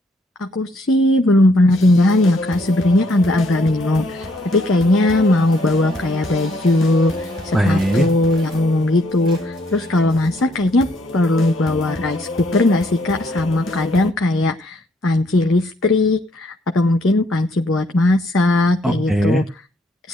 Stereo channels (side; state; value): both; normal; correlation 0.69